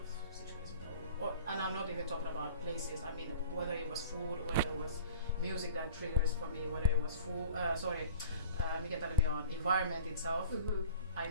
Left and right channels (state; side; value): inverted; both; correlation -0.45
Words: situations. And I'm not even talking about places. I mean, whether it was food, whether it was music that triggers for me, whether it was food. Environment itself. I